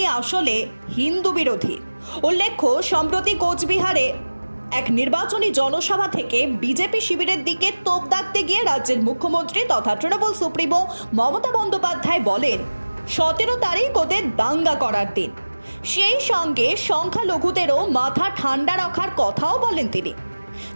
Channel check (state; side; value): inverted; both; correlation -1.00